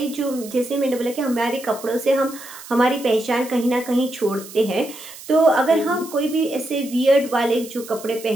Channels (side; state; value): right; noise; hiss, 16 dB below the sound